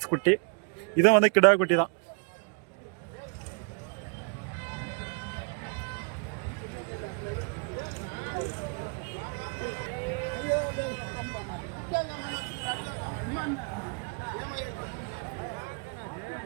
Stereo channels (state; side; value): quieter; left; 39.6 dB